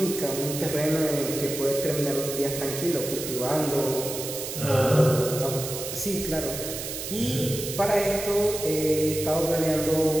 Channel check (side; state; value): right; noise; hiss, 7 dB below the sound